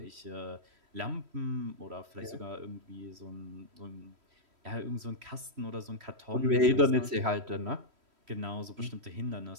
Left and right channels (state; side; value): late; left; 3.1 ms